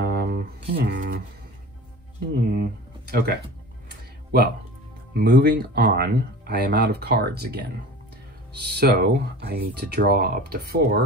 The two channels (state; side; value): normal; both; correlation 0.37